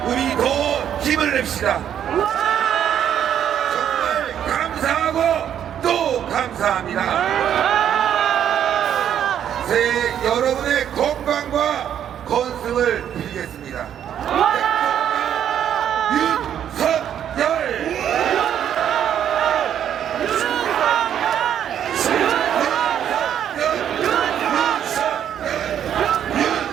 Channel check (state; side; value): quieter; left; 9.7 dB